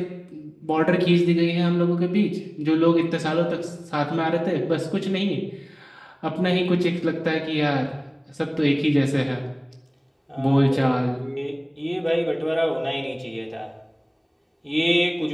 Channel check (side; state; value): both; identical; correlation 1.00